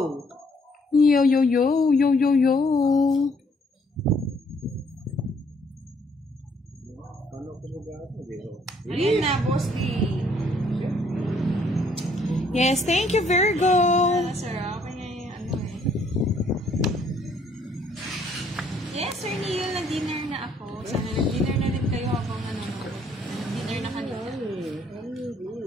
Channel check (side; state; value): both; normal; correlation 0.65